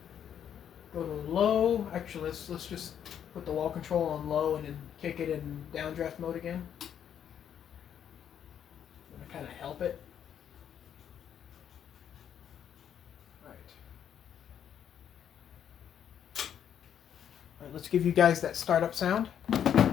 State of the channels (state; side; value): quieter; right; 9.1 dB